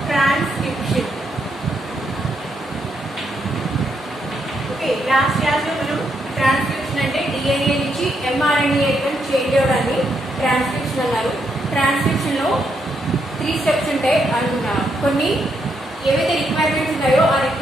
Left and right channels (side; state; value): both; normal; correlation 0.78